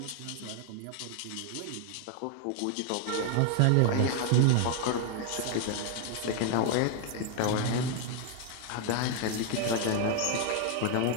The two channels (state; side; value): different; both; correlation 0.00